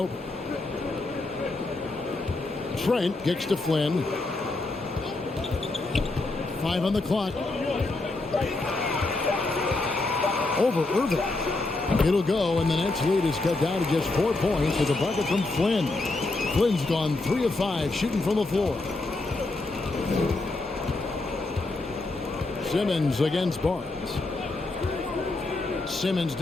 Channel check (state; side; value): quieter; right; 3.1 dB